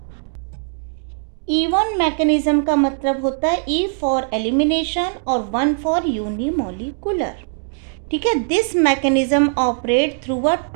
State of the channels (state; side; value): silent; left; digital silence